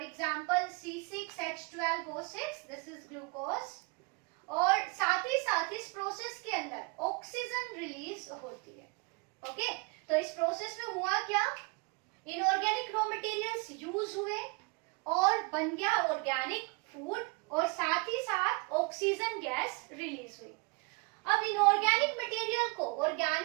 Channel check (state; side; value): quieter; left; 30.8 dB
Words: example C6H12O6, this is glucose. और साथ ही इस प्रोसेस के अंदर ऑक्सीजन रिलीज होती है। ओके, तो इस प्रोसेस में हुआ क्या? इनऑर्गेनिक रॉ मटेरियल्स यूज हुए और बन गया ऑर्गेनिक फूड और साथ ही साथ ऑक्सीजन गैस रिलीज हुई। अब इनऑर्गेनिक मटेरियल को